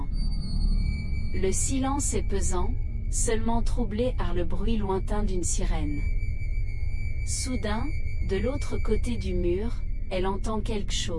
Le silence est pesant, seulement troublé par le bruit lointain d'une sirène. Soudain, de l'autre côté du mur, elle entend quelque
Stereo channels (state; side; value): identical; both; correlation 1.00